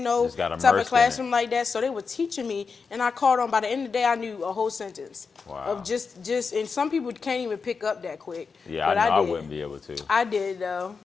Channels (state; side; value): quieter; right; 5.1 dB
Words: no type of classroom like that. So they were teaching me, and I caught on. By the end of the day, I knew a whole sentence. Wow. Of just, and some people can't even pick up that quick. Yeah, but I wouldn't be able to. I did, though.